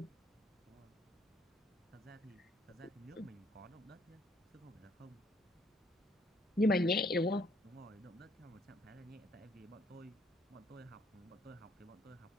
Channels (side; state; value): both; normal; correlation 0.65